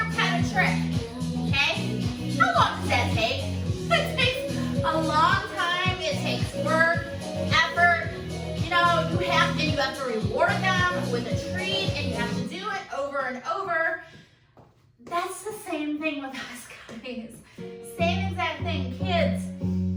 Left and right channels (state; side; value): identical; both; correlation 1.00